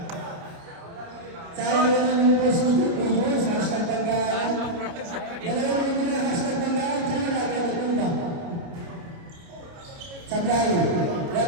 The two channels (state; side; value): late; left; 29 ms